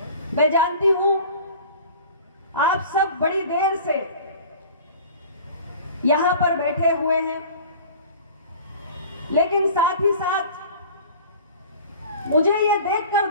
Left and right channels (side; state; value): both; inverted; correlation -0.43